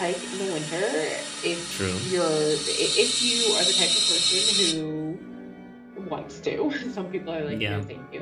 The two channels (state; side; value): identical; both; correlation 1.00